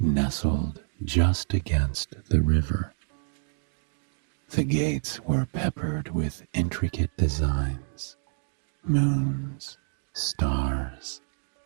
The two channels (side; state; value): left; silent; digital silence